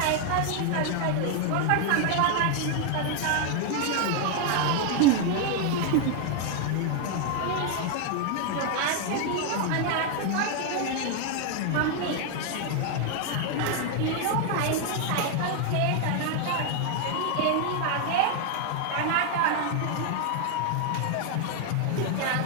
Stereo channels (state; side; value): different; both; correlation 0.00